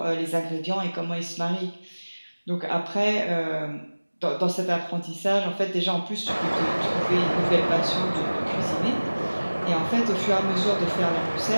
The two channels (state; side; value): inverted; both; correlation -1.00